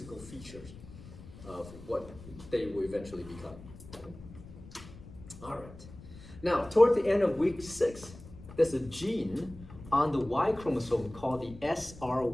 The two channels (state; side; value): noise; left; rumble, 17 dB below the sound